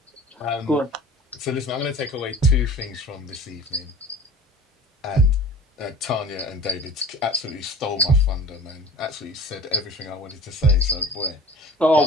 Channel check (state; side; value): normal; both; correlation 0.41